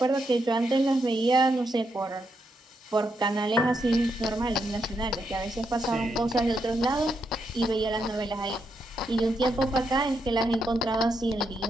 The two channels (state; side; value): normal; both; correlation 0.81